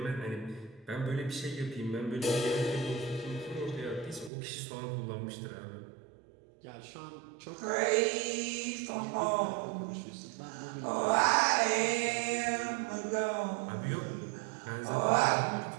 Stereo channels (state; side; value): drops out; left; at 4.3 s